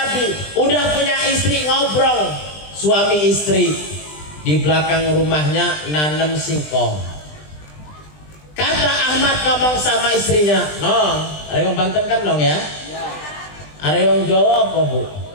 udah punya istri, ngobrol suami istri di belakang rumahnya nanem singkong. Kata Ahmad ngomong sama istrinya, "Nong, ada yang Banten kan Nong ya? Ada yang Jawa apa Bu?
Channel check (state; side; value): late; right; 20 ms